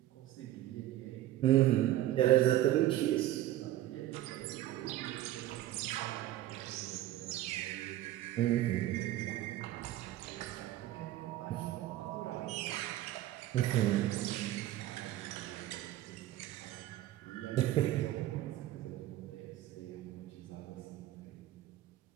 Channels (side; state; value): left; quieter; 14.3 dB